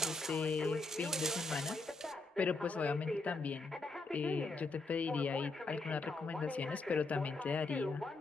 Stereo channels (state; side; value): quieter; right; 3.4 dB